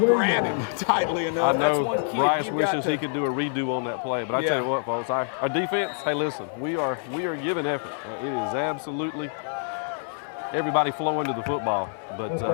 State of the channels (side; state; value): right; silent; 58 dB below the other